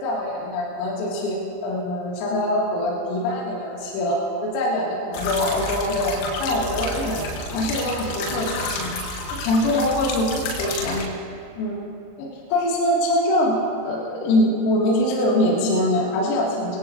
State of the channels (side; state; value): right; late; 40 ms